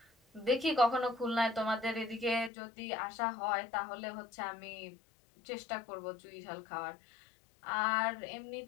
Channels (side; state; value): right; drops out; at 2.5 s